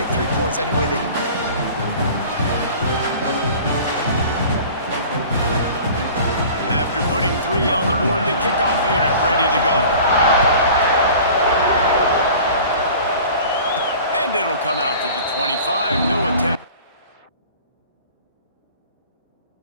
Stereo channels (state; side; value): inverted; both; correlation -0.43